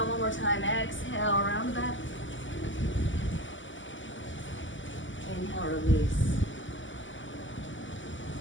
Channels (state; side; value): late; right; 0.55 ms